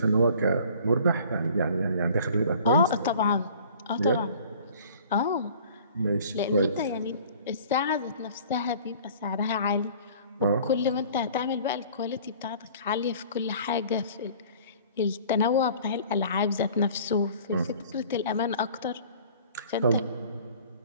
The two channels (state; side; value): inverted; both; correlation -0.49